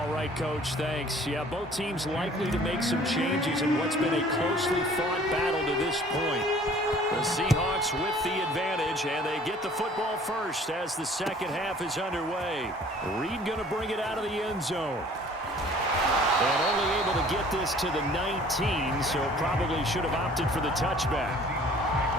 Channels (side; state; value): both; normal; correlation 0.52